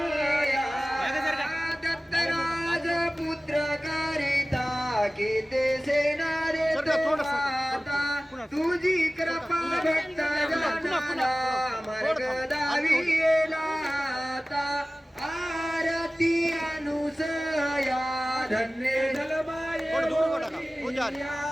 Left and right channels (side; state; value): both; normal; correlation 0.97